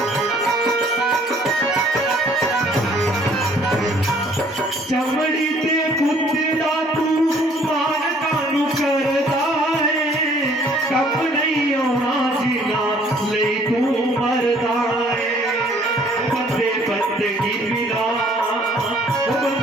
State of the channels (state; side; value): normal; both; correlation 0.59